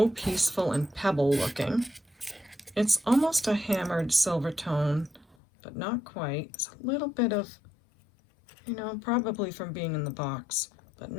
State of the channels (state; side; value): drops out; right; at 5.4 s